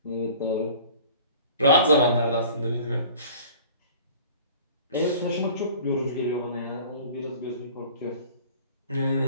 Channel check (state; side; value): inverted; both; correlation -0.46